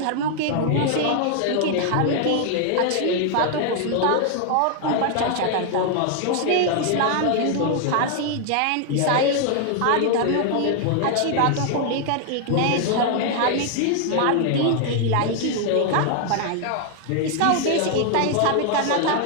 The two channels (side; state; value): both; different; correlation 0.00